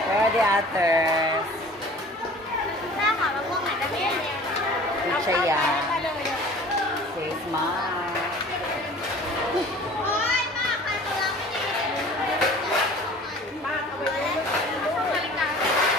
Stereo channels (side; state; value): both; normal; correlation 0.45